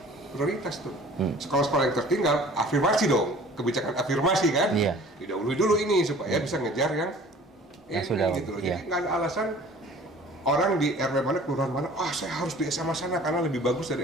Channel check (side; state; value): both; normal; correlation 0.48